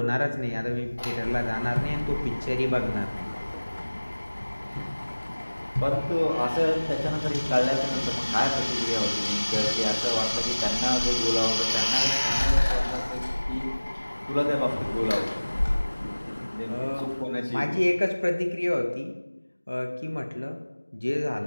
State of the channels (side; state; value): both; inverted; correlation -1.00